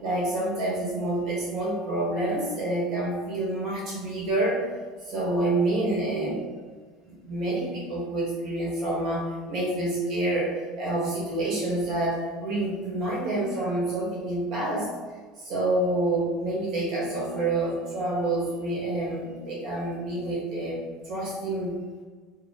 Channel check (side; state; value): both; normal; correlation 0.37